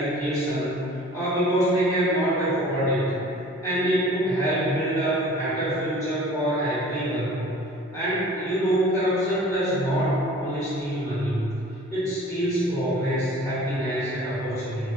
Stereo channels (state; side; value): normal; both; correlation 0.47